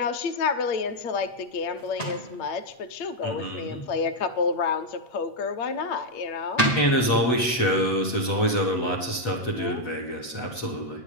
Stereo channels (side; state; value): right; late; 8.0 ms